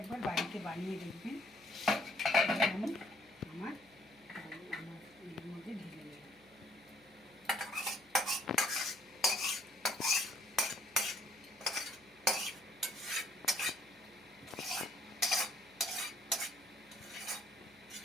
বাড়িতে বানিয়ে দেখবেন। আমি আমার এর মধ্যে ঢেলে নেব।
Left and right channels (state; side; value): noise; left; hum, 29 dB below the sound